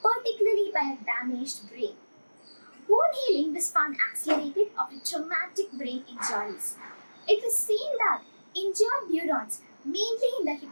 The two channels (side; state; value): both; inverted; correlation -1.00